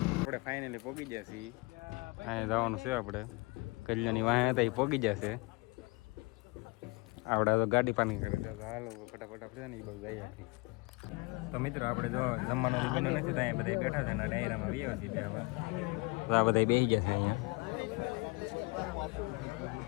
આપણે ફાઇનલી પહોંચી ગયા છીએ. અહીંયા જવાનું છે આપણે કલ્યાણની વાહ હતા એ પહોંચી જશે. આપણે તો ગાડી પાર્કિંગ કરે છે, તો હાલો ફટાફટ આપણે ને એ બધું જઈએ. તો મિત્રો આપણે જો જમવાનું બન્યું નથી, તો અહીંયા બધા બેઠા છે ને ડાયરામાં આવ્યા છીએ બે હવે. તો આ બધા બેસી ગયા છે અહીંયા.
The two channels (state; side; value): quieter; right; 26.9 dB